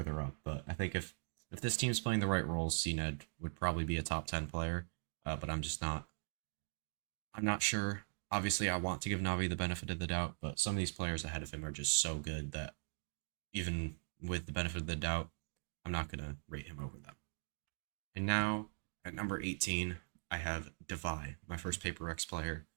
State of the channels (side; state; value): left; silent; digital silence